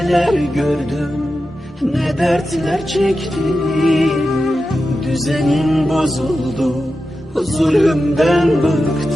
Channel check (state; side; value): normal; both; correlation 0.91